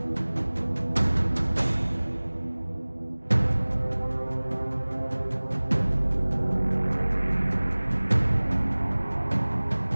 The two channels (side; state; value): both; inverted; correlation -1.00